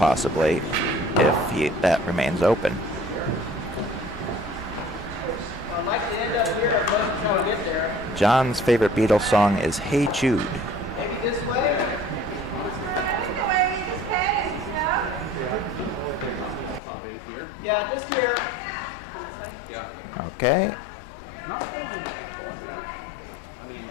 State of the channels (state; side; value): drops out; right; at 16.8 s